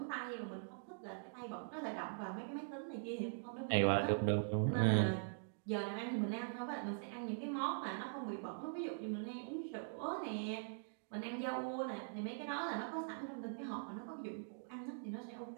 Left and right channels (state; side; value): silent; left; digital silence